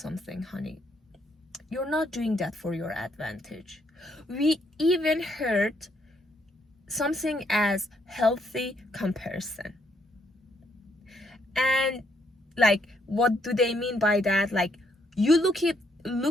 honey. You're not doing that for your advantage. We even heard something as healthy comparison. And like, what do they mean by that? Like, you look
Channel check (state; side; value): normal; both; correlation 0.72